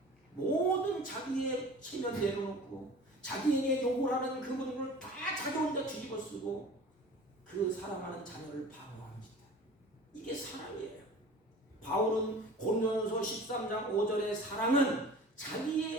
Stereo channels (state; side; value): normal; both; correlation 0.41